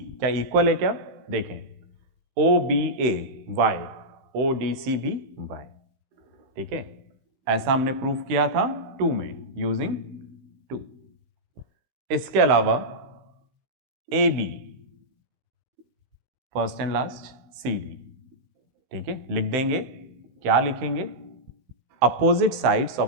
क्या इक्वल है क्या? देखें, O B A y, O D C भी वाई, ठीक है। ऐसा हमने प्रूफ किया था 2 में यूजिंग 2। इसके अलावा A B, first and last, C D, ठीक है। लिख देंगे, क्या लिखेंगे? Opposite sides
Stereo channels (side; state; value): left; late; 15 ms